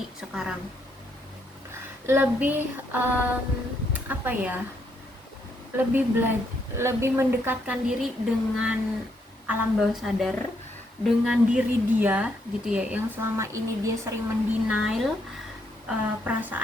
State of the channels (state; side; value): normal; both; correlation 0.75